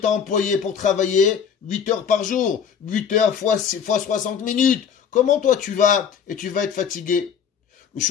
employé pour travailler 8 heures par jour. 8 heures fois 60 minutes. Comment toi tu vas être fatigué? Le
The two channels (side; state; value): right; quieter; 7.4 dB